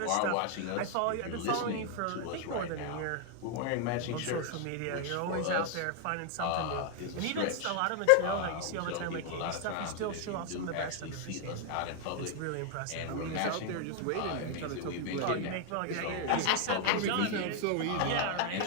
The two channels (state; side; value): different; both; correlation 0.00